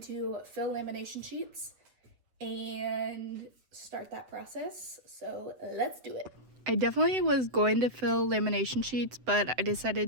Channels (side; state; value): left; late; 7.9 ms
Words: to fill lamination sheets and start that process. So let's do it. I definitely was going to fill lamination sheets, but I